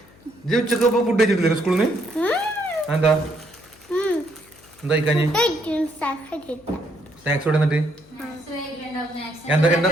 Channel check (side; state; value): left; noise; hum, 27 dB below the sound